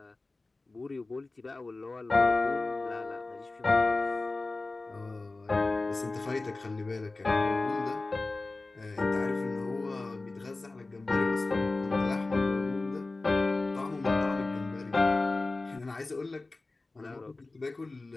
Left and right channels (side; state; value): right; quieter; 3.3 dB